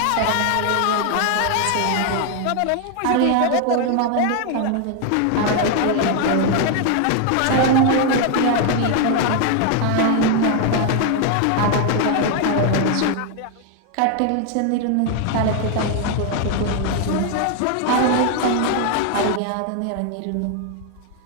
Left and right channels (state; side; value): different; both; correlation 0.01